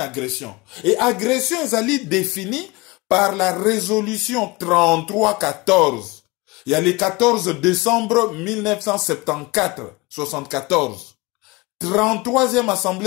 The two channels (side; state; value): right; quieter; 24.0 dB